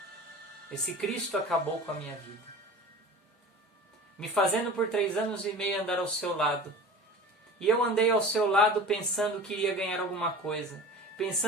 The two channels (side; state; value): both; normal; correlation 0.37